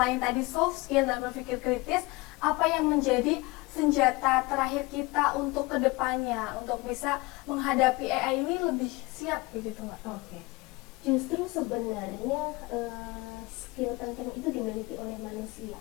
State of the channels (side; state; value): right; quieter; 23.5 dB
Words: tadi soft skill dan berpikir kritis, apa yang menjadi senjata terakhir kita untuk kedepannya, untuk bisa menghadapi AI ini lebih siap begitu Mbak? Oke. Justru sebenarnya skill penting itu dimiliki oleh manusia